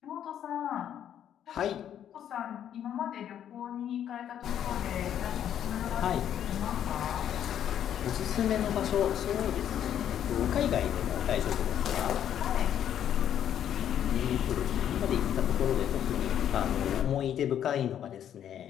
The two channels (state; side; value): quieter; right; 10.0 dB